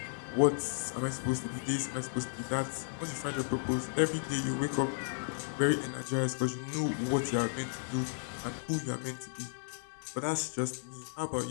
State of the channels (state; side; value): silent; right; digital silence